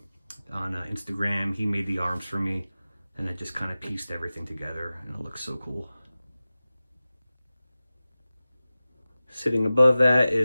on Instagram. He made the arms for me, and then just kind of pieced everything together, and it looks so cool. Sitting above that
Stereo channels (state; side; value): inverted; both; correlation -0.96